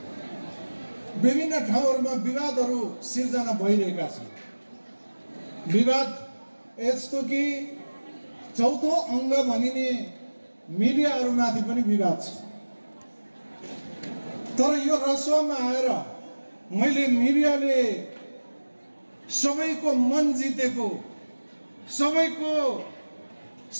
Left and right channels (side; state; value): both; inverted; correlation -1.00